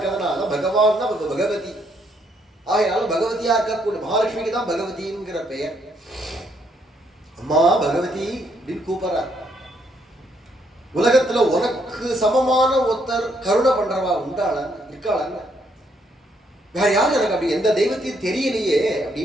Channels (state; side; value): normal; both; correlation 0.72